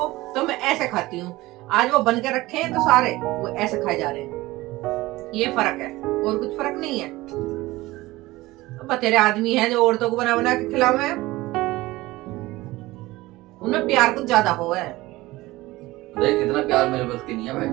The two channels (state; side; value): quieter; left; 19.1 dB